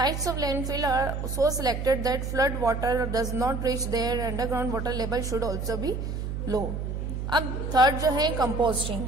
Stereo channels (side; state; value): right; noise; hum, 4 dB below the sound